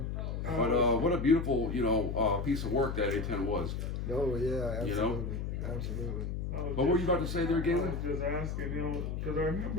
But what a beautiful, piece of work that A-10 was. Oh yeah, absolutely, absolutely. What were you about to say there, I Galen? was just asking him, because I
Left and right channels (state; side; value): noise; left; hum, 3 dB below the sound